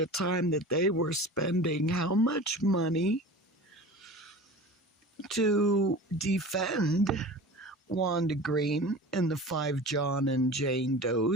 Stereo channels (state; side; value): normal; both; correlation 0.36